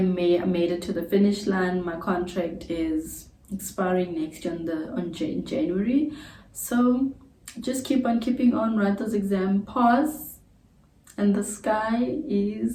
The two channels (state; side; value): identical; both; correlation 1.00